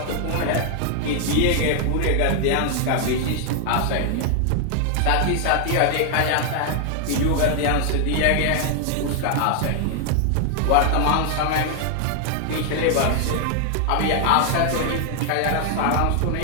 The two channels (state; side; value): different; both; correlation 0.00